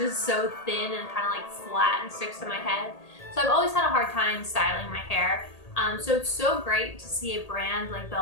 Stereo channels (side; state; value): right; late; 1.8 ms